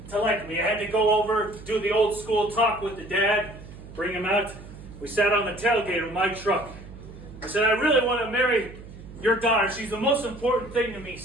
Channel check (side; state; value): right; noise; hum, 16 dB below the sound